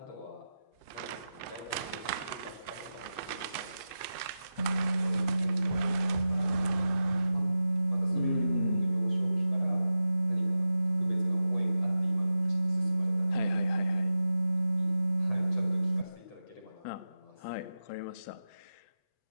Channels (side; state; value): right; late; 8.3 ms